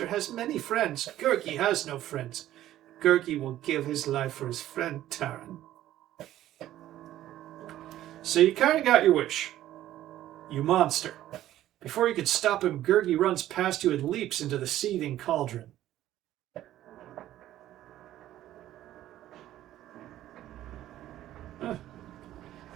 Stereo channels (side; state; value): left; quieter; 13.4 dB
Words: has many friends. Gurgi has no friends. Gurgi will give his life for his friend Taryn. So you kind of got your wish. You monster. Before you could stop him, Gurgi runs past you and leaps into the seething cauldron.